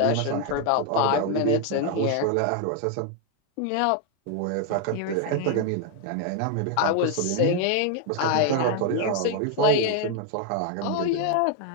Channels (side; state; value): both; different; correlation 0.00